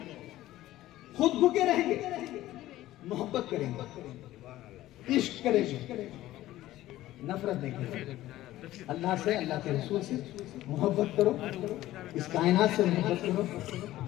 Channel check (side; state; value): right; quieter; 15.3 dB